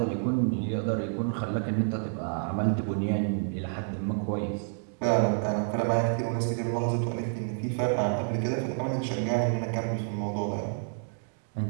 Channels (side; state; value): left; silent; digital silence